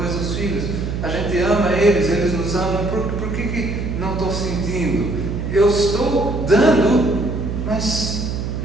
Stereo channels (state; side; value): noise; right; hum, 3 dB below the sound